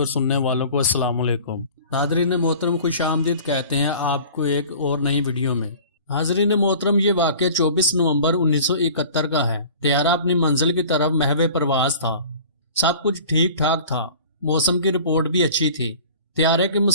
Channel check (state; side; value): inverted; both; correlation -0.44